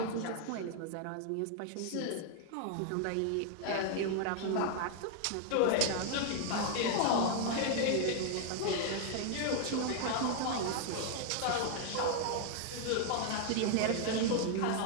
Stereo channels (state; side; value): different; both; correlation 0.00